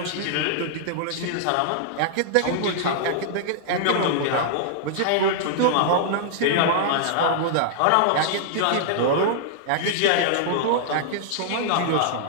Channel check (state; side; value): different; both; correlation -0.01